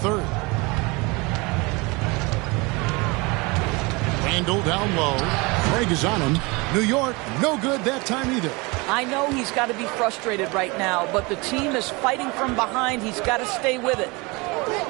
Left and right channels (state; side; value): quieter; left; 26.3 dB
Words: Randall down low. Craig is on him. New York, no good that time either. I know he's got to be frustrated right now, but the team is fighting from behind. He's got to stay with it.